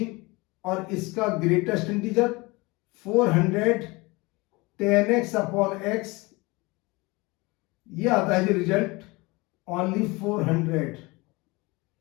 और इसका greatest integer 400 10x upon x, ये आता है जो रिजल्ट ओनली 400।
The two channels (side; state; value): right; quieter; 24.1 dB